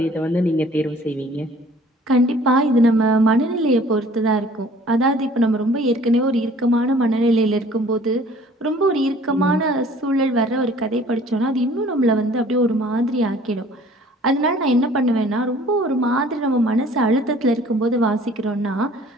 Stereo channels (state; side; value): normal; both; correlation 0.52